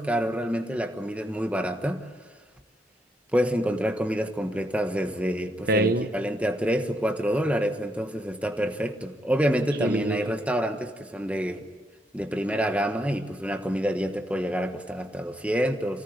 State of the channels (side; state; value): both; normal; correlation 0.78